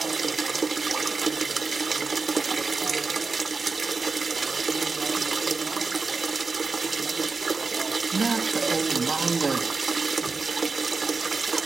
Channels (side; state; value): left; quieter; 4.3 dB